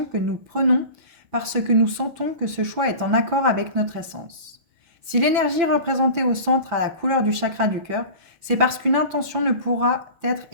que nous prenons parce que nous sentons que ce choix est en accord avec notre essence. Si l'énergie représentée au centre a la couleur du chakra du cœur, c'est parce qu'une intention ne pourra être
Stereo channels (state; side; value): late; left; 5.9 ms